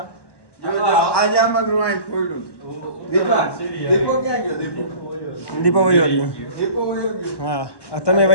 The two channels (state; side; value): late; right; 1.1 ms